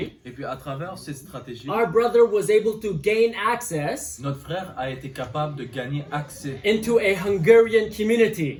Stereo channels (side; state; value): both; identical; correlation 1.00